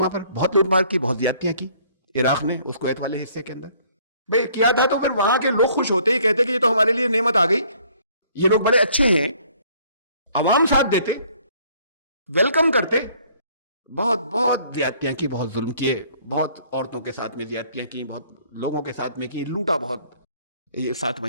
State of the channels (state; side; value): inverted; both; correlation -0.60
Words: پر بہت لوٹ مار کی، بہت زیادتیاں کی عراق نے اس کویت والے حصے کے اندر. بھائی کیا تھا تو پھر وہاں کے لوگ خوش ہوتے ہی کہتے کہ یہ تو ہمارے لیے نعمت آ گئی، یہ لوگ بڑے اچھے ہیں. عوام ساتھ دیتے، ویلکم کرتے. بہت بہت زیادتیاں کی، بہت ظلم کیے، بہت عورتوں کے ساتھ میں زیادتیاں کی، بہت لوگوں کے ساتھ میں کی، لوٹا بہت. یہ 7